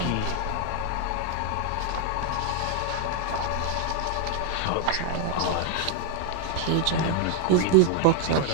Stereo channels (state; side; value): different; both; correlation 0.00